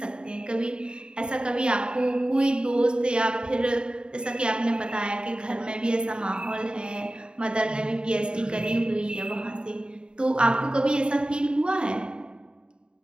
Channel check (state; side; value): late; left; 0.050 ms